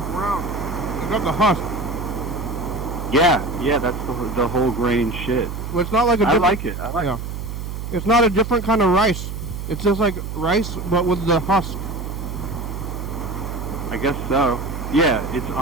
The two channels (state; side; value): noise; right; hum, 6 dB below the sound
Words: brown. It's got the husk. Yeah, that's the whole grain shit. Well, it's not like I like it. It's not a different kind of rice. It's just like rice, but with the husk. I guess so. Yeah, it's